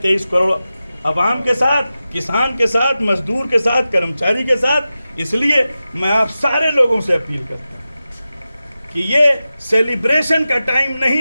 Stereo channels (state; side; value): inverted; both; correlation -0.93